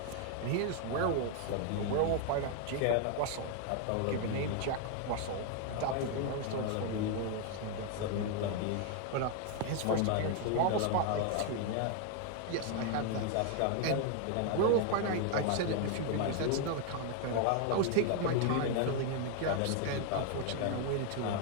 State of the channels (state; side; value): different; both; correlation 0.00